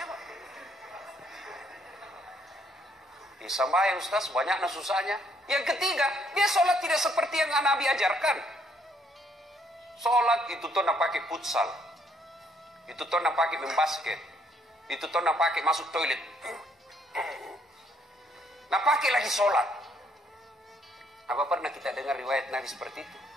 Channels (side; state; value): both; normal; correlation 0.68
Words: Sembahyang Ustaz, banyaknya susahnya. Yang ketiga, dia sholat tidak seperti yang Nabi ajarkan. Sholat itu tuh nak pakai futsal, itu tuh nak pakai main basket, itu tuh nak pakai masuk toilet, nak pakai lagi sholat. Apa pernah kita dengar riwayat Nabi seperti itu?